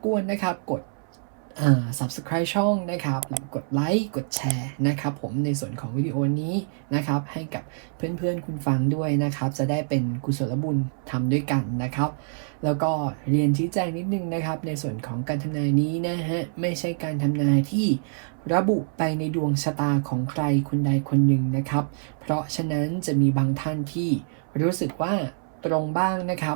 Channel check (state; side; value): silent; left; 61 dB below the other